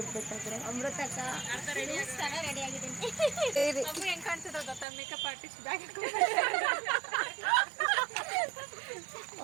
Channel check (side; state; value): left; drops out; at 4.9 s